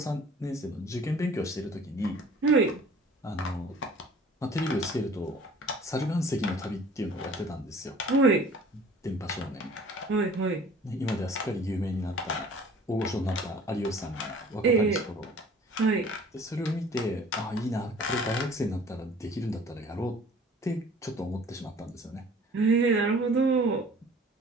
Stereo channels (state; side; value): normal; both; correlation 0.49